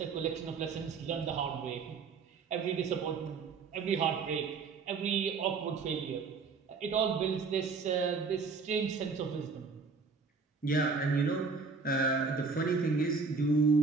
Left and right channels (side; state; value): left; quieter; 4.8 dB